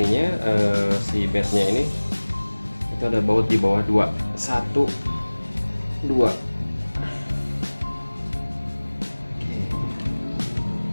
si bednya ini, itu ada baut di bawah 2, 1, 2.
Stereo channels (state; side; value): inverted; both; correlation -1.00